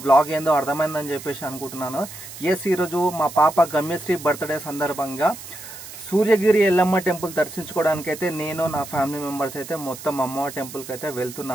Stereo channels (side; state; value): right; noise; hiss, 14 dB below the sound